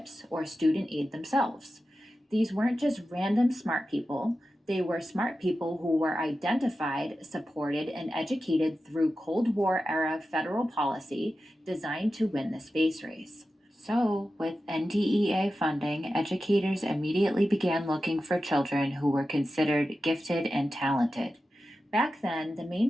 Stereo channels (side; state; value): both; normal; correlation 0.92